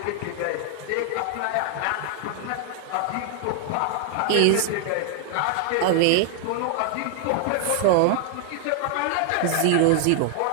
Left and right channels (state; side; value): different; both; correlation 0.00